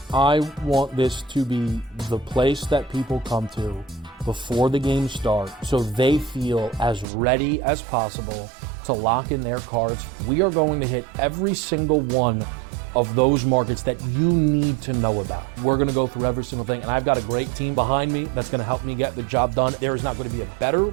I want this to be the place that people come to before the games start so they feel as ready as possible to lock in their cards. We are going to hit every single one of those markets that you need to know about. We're going to go through every single thing, and I've got a great team behind me that's going to help me get the job done. There is not going to be a better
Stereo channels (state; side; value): drops out; left; at 7.1 s